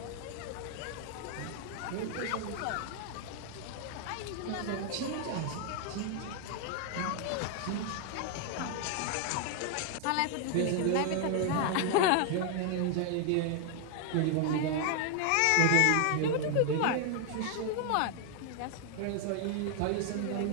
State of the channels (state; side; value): different; both; correlation 0.00